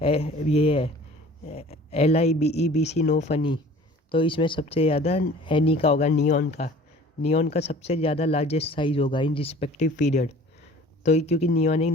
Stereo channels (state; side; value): normal; both; correlation 0.47